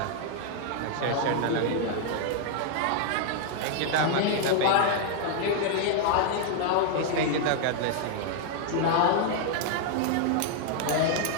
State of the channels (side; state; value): both; different; correlation 0.00